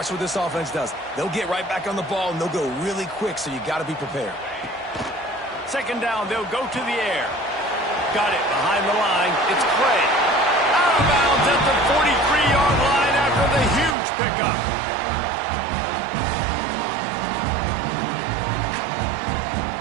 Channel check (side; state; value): left; drops out; at 14.0 s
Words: what this offense does. They'll get right back on the ball, and they'll go really quick, so you got to be prepared. Second down, they'll go to the air. Got it behind the line. It's Clay. Out of bounds at the 43-yard line after the huge pickup.